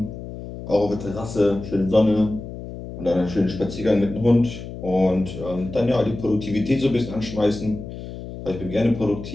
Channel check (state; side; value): noise; left; hum, 11 dB below the sound